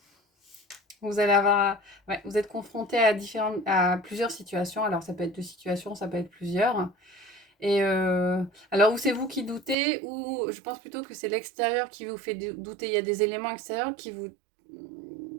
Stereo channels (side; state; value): left; drops out; at 9.8 s